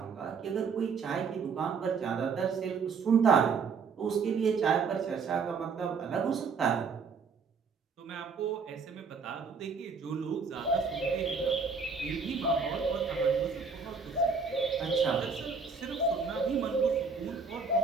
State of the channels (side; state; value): left; quieter; 5.1 dB